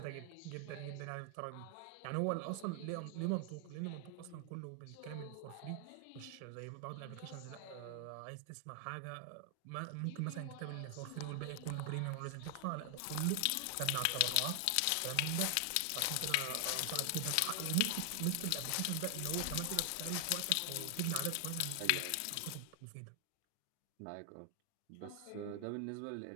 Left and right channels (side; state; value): both; different; correlation 0.00